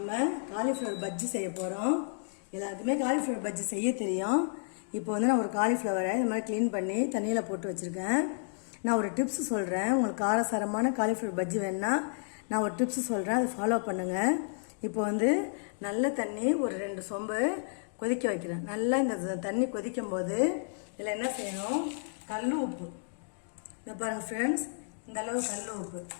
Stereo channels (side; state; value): right; silent; digital silence